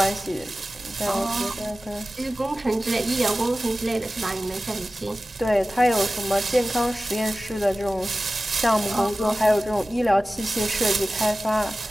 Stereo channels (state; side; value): normal; both; correlation 0.96